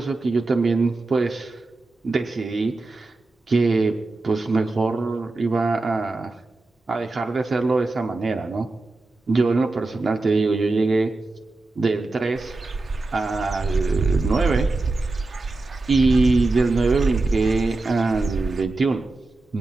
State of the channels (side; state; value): left; quieter; 3.2 dB